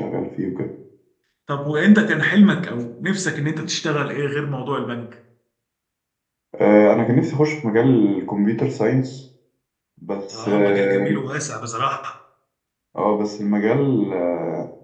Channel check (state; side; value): identical; both; correlation 1.00